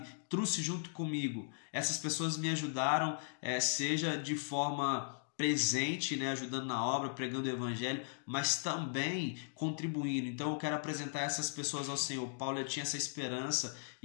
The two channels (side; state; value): right; silent; digital silence